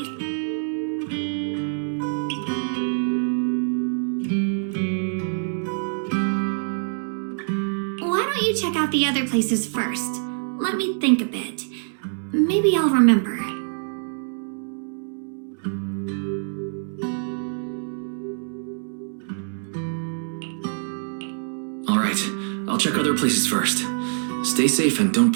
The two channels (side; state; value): left; silent; 62 dB below the other